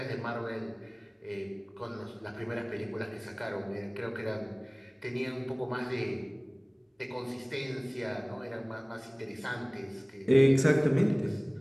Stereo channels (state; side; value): identical; both; correlation 1.00